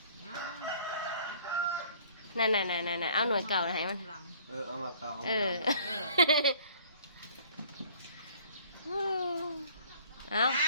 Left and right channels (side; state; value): both; inverted; correlation -0.55